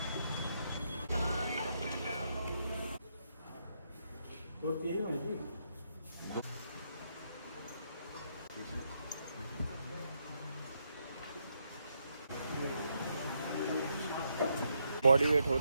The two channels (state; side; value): inverted; both; correlation -0.78